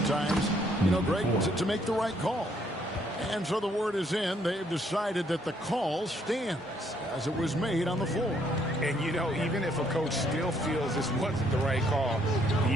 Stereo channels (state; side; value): normal; both; correlation 0.68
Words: Greg, to make the right call. And so the word is in. They've decided that the call stands as it was made on the floor. And, even if a coach still feels this wasn't the right call,